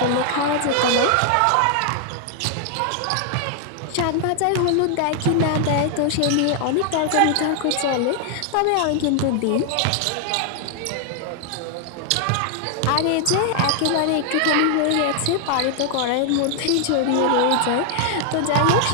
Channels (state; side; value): different; both; correlation 0.00